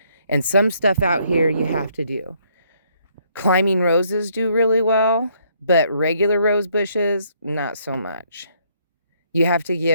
And some stuff out here you have to do. Climbing roses do really well, but regular rose bushes, not so much. You have to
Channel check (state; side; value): inverted; both; correlation -0.69